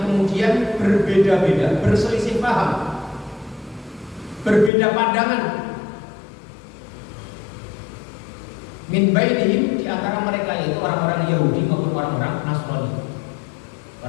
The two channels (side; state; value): right; drops out; at 4.7 s